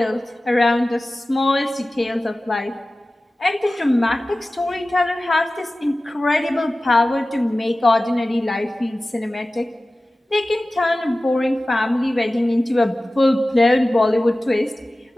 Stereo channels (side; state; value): both; normal; correlation 0.96